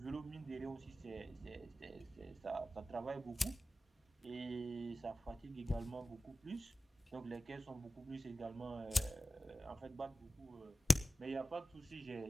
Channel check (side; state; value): both; normal; correlation 0.94